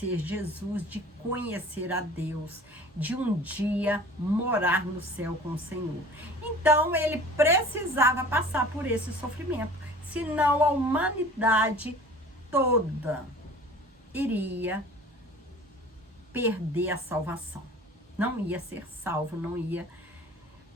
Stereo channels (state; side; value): normal; both; correlation 0.44